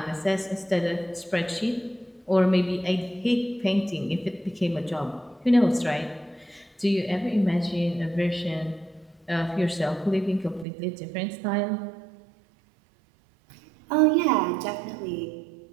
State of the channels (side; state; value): left; drops out; at 10.7 s